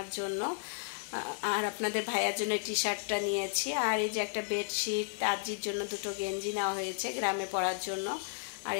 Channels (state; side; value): silent; right; 56 dB below the other